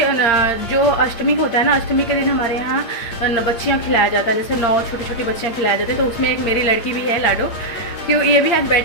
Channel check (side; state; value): right; late; 8.6 ms